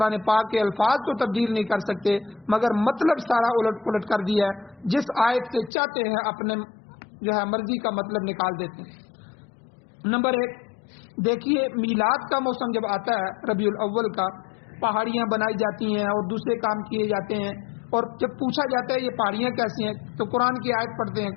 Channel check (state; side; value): drops out; right; at 5.7 s